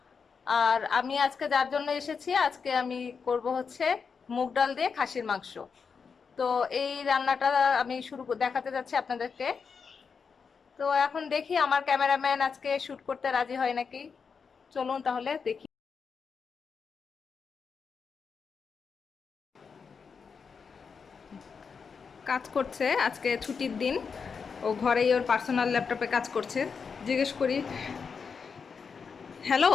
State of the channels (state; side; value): quieter; right; 5.7 dB